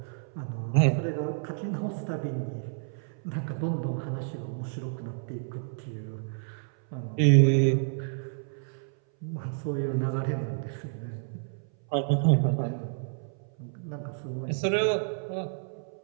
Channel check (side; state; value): left; silent; 58 dB below the other